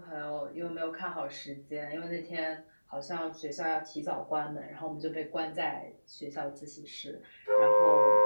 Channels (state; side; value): inverted; both; correlation -1.00